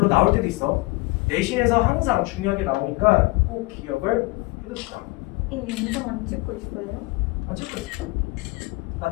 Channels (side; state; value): right; quieter; 23.2 dB